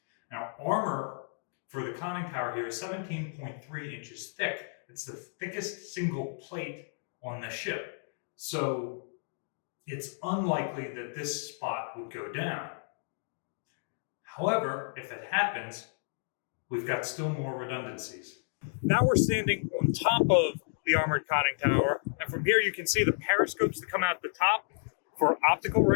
Now, armor for the conning tower here is 17.3 inches thick. It's the thickest single plate on the ship. So it's unlikely that this spot would go down. However, if that happens, we've got still more redundancies. Now we're standing on top of the armored conning tower, and from here you can see the periscopes that come out the top for optical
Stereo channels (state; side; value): silent; right; digital silence